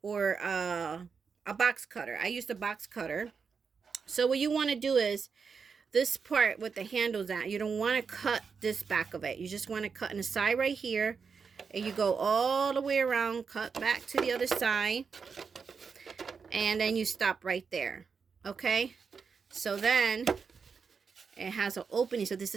or a box cutter. I used a box cutter. So what you want to do is this part with the handles at, you don't want to cut this back of it. You just want to cut in the side right here, and you go all the way around, cut back to the other side, and then you stop right there. Okay, so then it has an opening. So this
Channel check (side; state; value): left; quieter; 5.7 dB